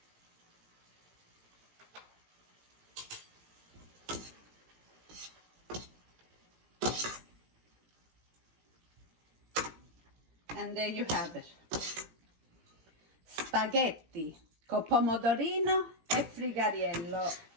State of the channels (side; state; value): left; late; 17 ms